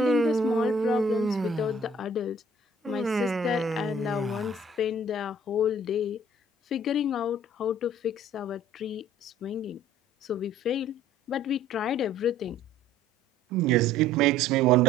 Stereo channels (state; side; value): normal; both; correlation 0.53